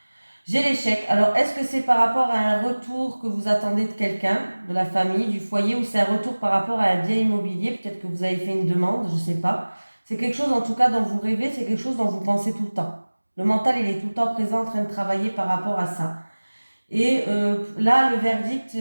J'ai l'échec. Alors, est-ce que c'est par rapport à un retour que vous attendez de quelqu'un, de la famille, du foyer, ou c'est un retour par rapport à un bien immobilier? Peut-être que vous avez fait une demande, je ne sais pas. C'est quelque chose, en tout cas, dont vous rêvez, c'est quelque chose dont vous pensez tout le temps. Le mental, il est tout le temps présent, en train de travailler par rapport à ça. Et là, le verdict,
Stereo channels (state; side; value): inverted; both; correlation -1.00